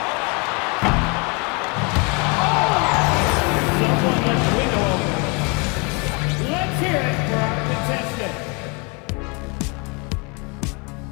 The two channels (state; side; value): quieter; right; 30.5 dB